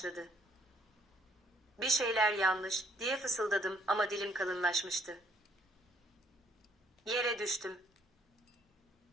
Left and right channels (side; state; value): both; normal; correlation 0.64